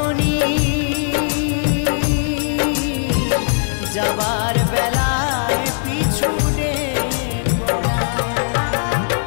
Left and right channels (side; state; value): right; silent; digital silence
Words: যাবার বেলায় পিছু ডেকো না।